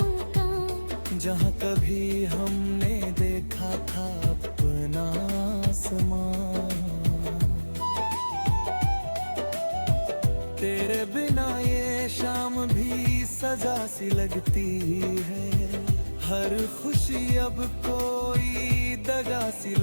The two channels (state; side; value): inverted; both; correlation -1.00